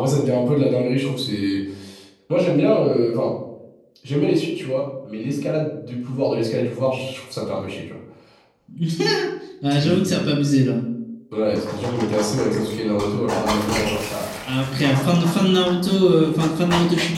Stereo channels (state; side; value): identical; both; correlation 1.00